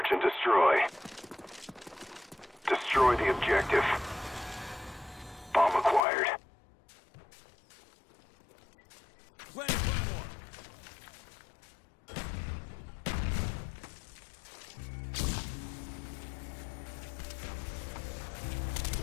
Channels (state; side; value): drops out; right; at 6.0 s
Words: and destroy. Destroy the objective. Bomb acquired. Planning Claymore.